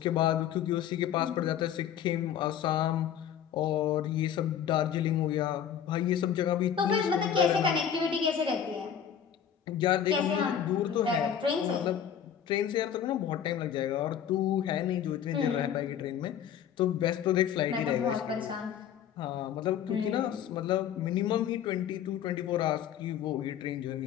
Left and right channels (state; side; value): quieter; right; 9.1 dB